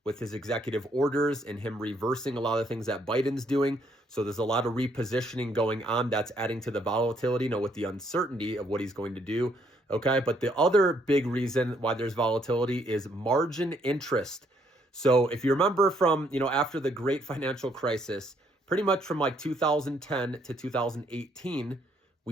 with his executive orders and him reversing a lot of things that Biden's doing. So there's a lot of repositioning going on that's adding to the volatility, with the uncertainty of what he's going to do. Okay, but the other big reason why there's volatility is margin interest. So if you remember from, after the great financial crisis, pretty much from like 2010 to 2018,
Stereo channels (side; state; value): both; normal; correlation 0.69